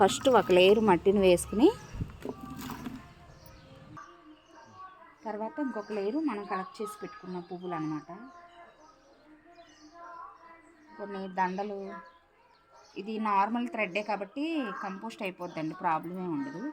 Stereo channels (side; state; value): both; identical; correlation 1.00